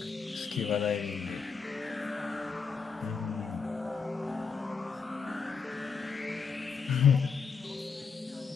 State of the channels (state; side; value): quieter; right; 5.5 dB